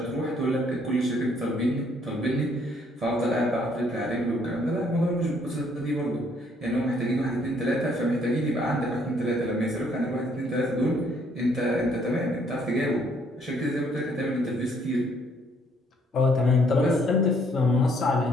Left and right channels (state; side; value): normal; both; correlation 0.66